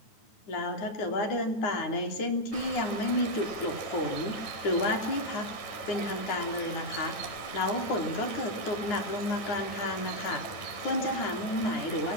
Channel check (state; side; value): late; right; 9.4 ms